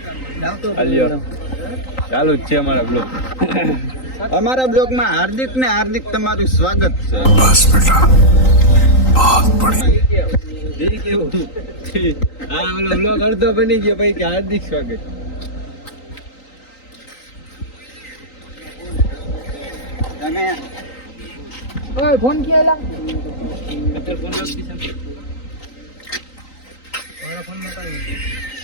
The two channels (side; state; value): right; late; 3.9 ms